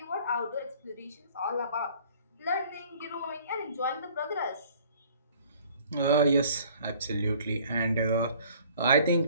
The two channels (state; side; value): inverted; both; correlation -0.54